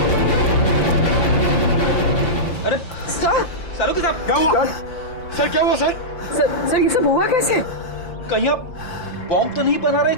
अरे सर, सालू साहब क्या हुआ? सर क्या हुआ सर? सर ये सब हुआ कैसे? कहीं आप बॉम्ब तो नहीं बना रहे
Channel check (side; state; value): right; late; 5.8 ms